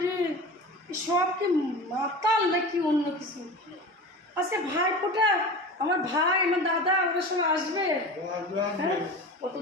রে, সব কি মাতাল নাকি অন্য কিছু? আজকে ভাই ফোটা, আমার ভাই আমার দাদা ওরা সব আসবে। হ্যাঁ,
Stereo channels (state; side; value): normal; both; correlation 0.32